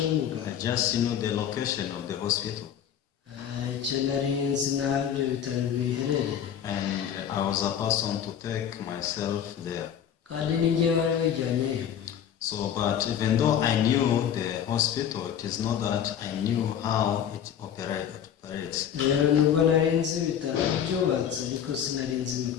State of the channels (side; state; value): right; quieter; 9.2 dB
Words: w'umuganga. I just knew the location of the hospital. Icyo nari nzi n'aho ibyo bitaro biherereye. And I was a person to take myself there. Kandi ni njyewe wari wijyanyeyo. So, but even though I knew the hospital, it is not that I knew how it operates. Rero nubwo nari nzi ibitaro byubatse ariko sinari nzi